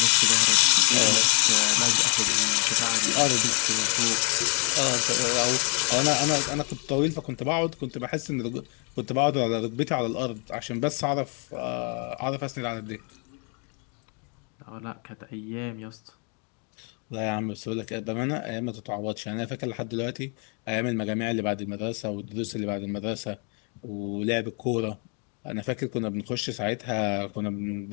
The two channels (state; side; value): quieter; right; 37.0 dB